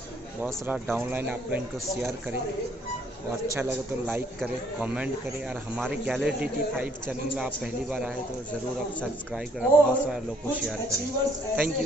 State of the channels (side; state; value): both; normal; correlation 0.65